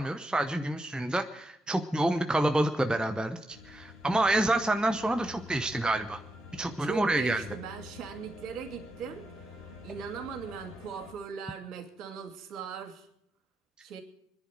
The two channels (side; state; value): both; normal; correlation 0.85